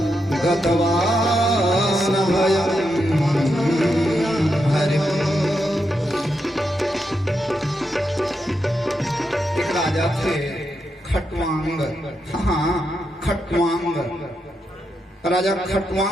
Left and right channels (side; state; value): both; normal; correlation 0.84